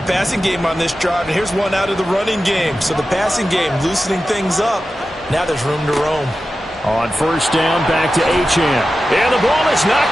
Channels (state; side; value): normal; both; correlation 0.93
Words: passing game on this drive, and here's one out of the running game. So the passing game loosening things up. Now there's room to roam. On first down, back to Achane. And the ball is